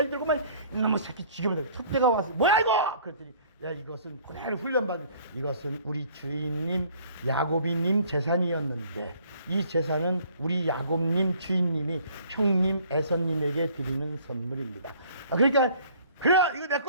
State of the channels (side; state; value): both; inverted; correlation -0.55